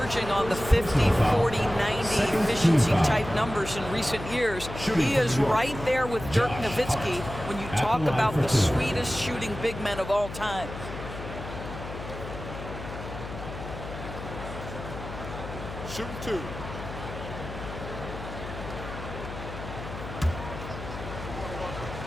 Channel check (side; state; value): left; noise; hum, 10 dB below the sound